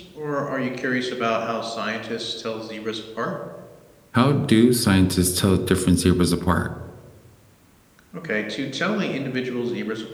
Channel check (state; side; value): identical; both; correlation 1.00